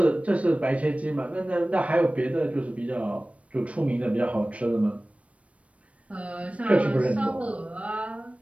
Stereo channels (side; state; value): left; late; 0.064 ms